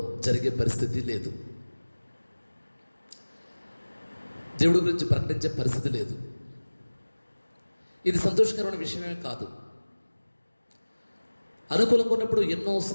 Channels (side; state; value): both; inverted; correlation -1.00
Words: జరిగే పరిస్థితి లేదు. దేవుడి గురించి ప్రకటించే పరిస్థితి లేదు. ఇది సంతోషకరమైన విషయమే కాదు. అనుకూలంగా ఉన్నప్పుడు